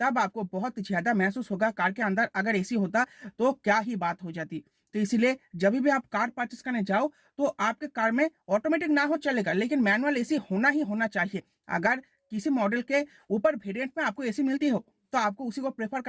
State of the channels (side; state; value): both; identical; correlation 1.00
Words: आपको बहुत ज्यादा महसूस होगा कार के अंदर अगर एसी होता तो क्या ही बात हो जाती। तो इसीलिए जब भी आप कार परचेस करने जाओ तो आपके कार में ऑटोमेटिक ना हो चलेगा, लेकिन मैनुअल एसी होना ही होना चाहिए। अगर किसी मॉडल के ऊपर वेरिएंट में आपको एसी मिलती हो तो आपको उसी को प्रेफर